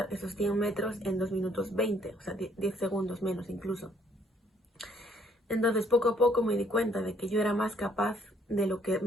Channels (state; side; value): normal; both; correlation 0.65